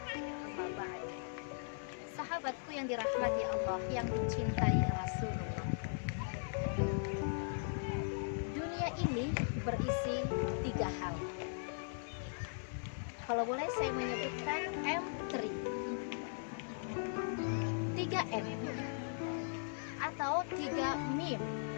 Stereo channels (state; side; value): silent; right; 52 dB below the other